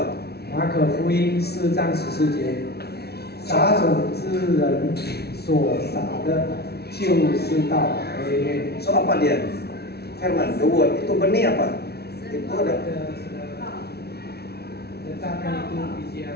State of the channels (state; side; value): late; right; 0.47 ms